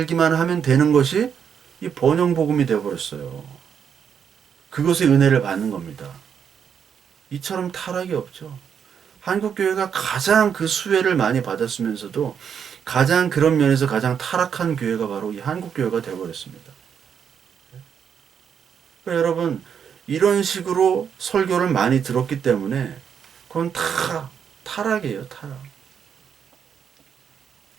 하면 되는 것이 이 번영 복음이 되어 버렸어요. 그것의 은혜를 받는 겁니다. 이처럼 타락이 없죠. 한국교회가 가장 그 수혜를 많이 받았으면서도 가장 그런 면에서 가장 타락한 교회가 바로 이 한국교회가 되어버렸습니다. 그러니까 여러분 이런 식으로 설교를 많이 들었기 때문에 그건 다 타락이에요. 타락.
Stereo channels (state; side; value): quieter; left; 7.6 dB